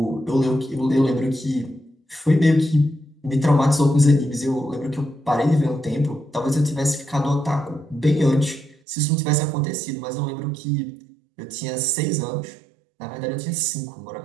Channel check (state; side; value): drops out; left; at 8.8 s